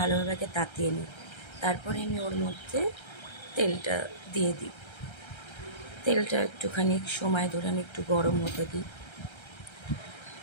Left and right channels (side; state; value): right; late; 1.3 ms